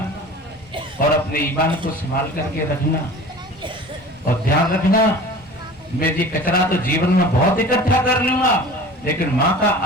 और अपने ईमान को संभाल करके रखना और ध्यान रखना, मैं ये कचरा तो जीवन में बहुत इकट्ठा कर लूंगा लेकिन माँ का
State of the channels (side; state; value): both; normal; correlation 0.40